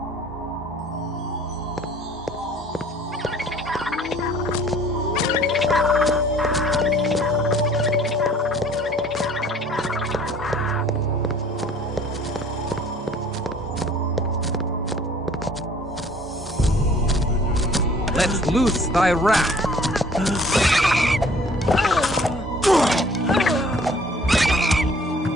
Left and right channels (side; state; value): both; normal; correlation 0.54